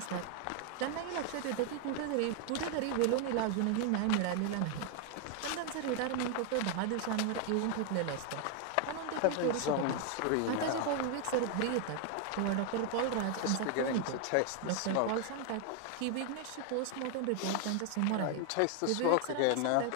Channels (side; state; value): both; different; correlation 0.00